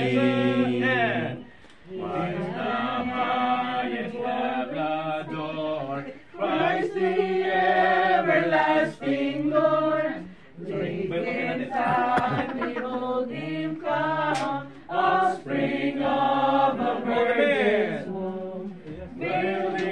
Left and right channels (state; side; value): identical; both; correlation 1.00